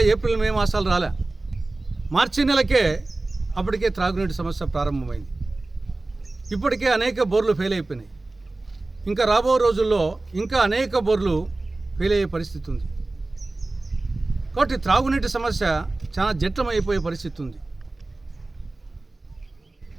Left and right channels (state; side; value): quieter; left; 3.0 dB